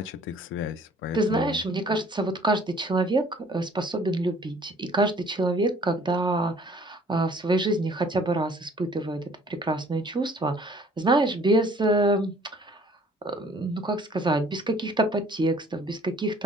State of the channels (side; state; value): both; normal; correlation 0.56